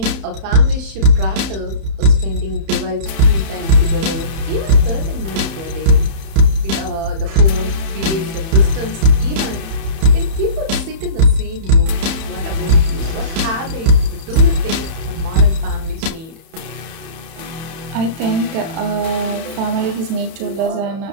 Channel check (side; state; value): left; late; 30 ms